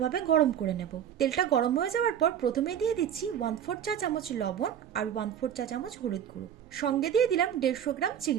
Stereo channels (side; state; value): left; quieter; 9.4 dB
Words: গরম করে নেব। তেলটা গরম হয়ে যাওয়ার পর প্রথমে দিয়ে দিচ্ছি 1/4 চা চামচ লবণ আর 1/4 চা চামচ হলুদ গুঁড়ো। সঙ্গে দিয়ে দিলাম 150 গ্রাম